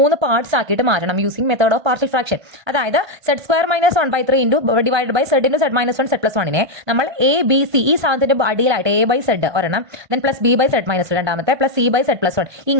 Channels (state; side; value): late; left; 1.2 ms